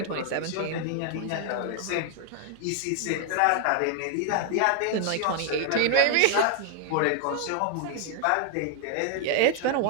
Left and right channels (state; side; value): different; both; correlation 0.00